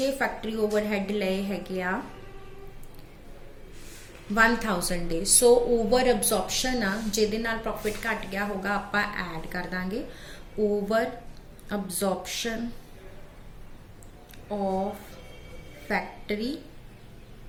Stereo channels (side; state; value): both; identical; correlation 1.00